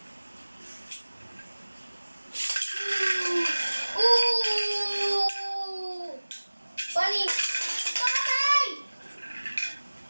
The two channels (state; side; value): inverted; both; correlation -1.00